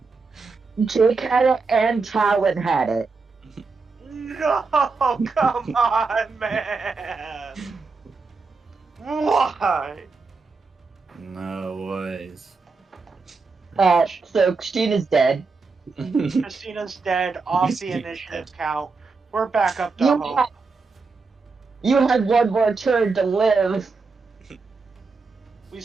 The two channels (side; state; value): left; quieter; 4.3 dB